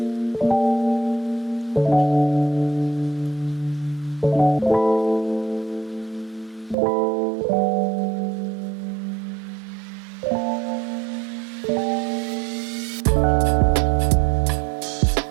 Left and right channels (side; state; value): left; drops out; at 6.8 s